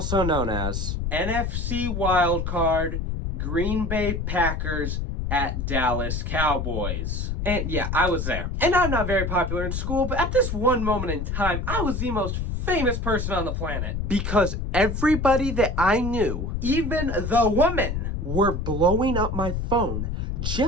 known as NFC Wildcard, Green Bay Packers at Dallas Cowboys. And yeah, I was there. And I'm not very popular in school, but at this one moment in time, I was the most famous person on the planet. Because everybody that I knew, even the women, were blowing up my phone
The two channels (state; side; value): noise; left; rumble, 2 dB below the sound